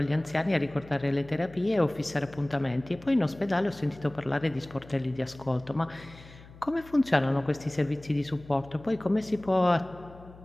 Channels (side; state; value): left; noise; hum, 20 dB below the sound